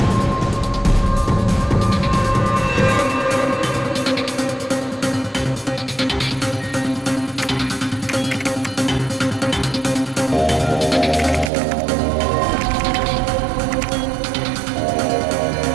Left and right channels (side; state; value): left; drops out; at 11.5 s